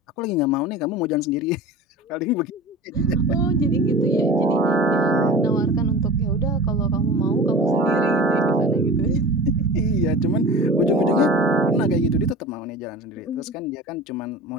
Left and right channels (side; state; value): both; normal; correlation 0.36